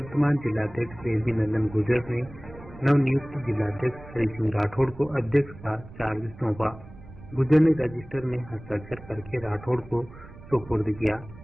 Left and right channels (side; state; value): right; noise; rumble, 18 dB below the sound